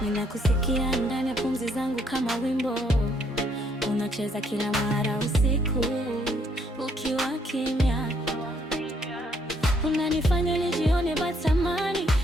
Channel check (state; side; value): normal; both; correlation 0.69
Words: ninakusikia ndani ya pumzi zangu kama wimbo unacheza kila mara usiku ukiwa kimya. Unanifanya nijione batamani